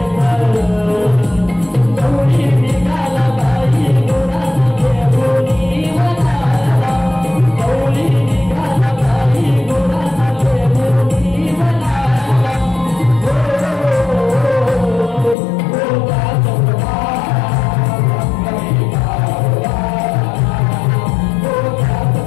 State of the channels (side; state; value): right; drops out; at 15.4 s